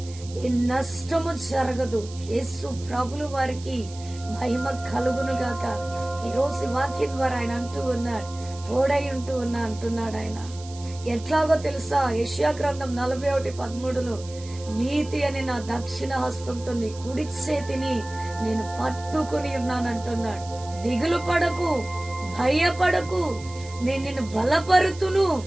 ఈ నష్టము జరగదు. యేసు ప్రభులు వారికి మహిమ కలుగును గాక. ఈరోజు వాక్యం ద్వారా ఆయన అంటూ ఉన్నాడు, తోడై ఉంటూ ఉన్నా అంటున్నాడు ఆయన. ఎట్లాగో తెలుసా, యెషయా గ్రంథం 41:13 నీతి అని నా దక్షిణ హస్తంతో నీ కుడి చేతిని నేను పట్టుకుని ఉన్నానంటున్నాడు. దిగులు పడకు, భయపడకు, నేను నిన్ను బలపరుతును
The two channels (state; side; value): noise; right; hiss, 18 dB below the sound